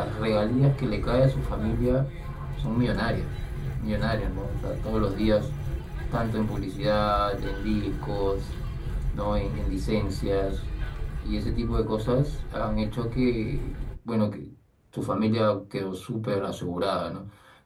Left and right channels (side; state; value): both; identical; correlation 1.00